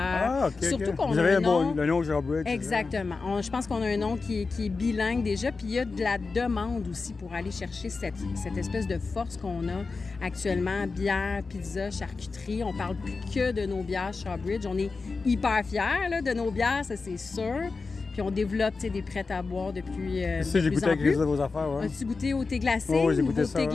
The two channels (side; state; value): right; quieter; 4.2 dB